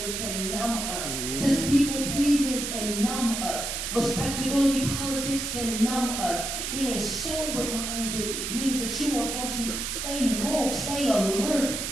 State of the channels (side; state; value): right; noise; hiss, 3 dB below the sound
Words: can numb us. This people-pleasing can numb us. Respectability politics can numb us. Being sober-minded means that you are going to stay woke, stay alert,